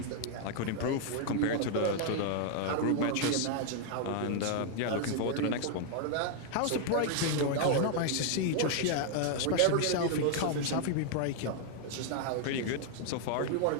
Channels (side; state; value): both; different; correlation 0.00